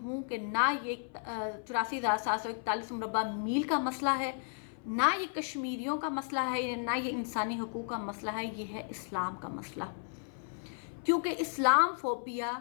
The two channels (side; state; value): right; silent; 55 dB below the other